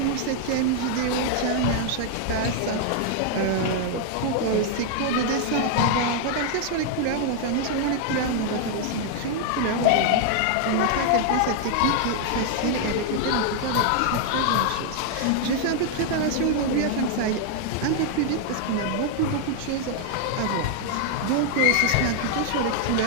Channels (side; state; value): both; different; correlation 0.00